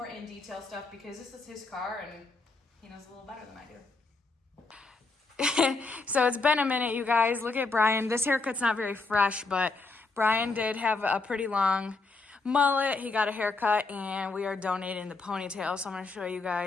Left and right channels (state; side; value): quieter; right; 3.8 dB